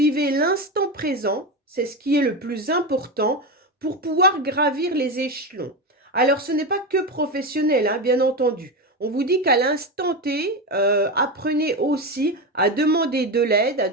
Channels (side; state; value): both; normal; correlation 0.16